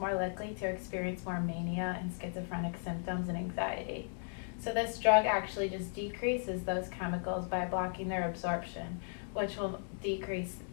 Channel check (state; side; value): silent; right; 54 dB below the other